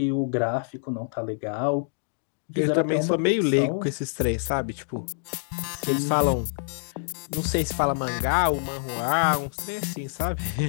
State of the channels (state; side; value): silent; right; digital silence